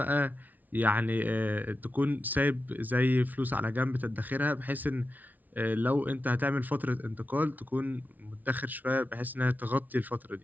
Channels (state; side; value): late; left; 0.079 ms